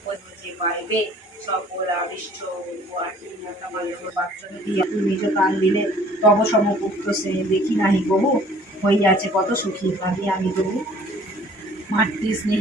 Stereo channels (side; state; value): both; normal; correlation 0.54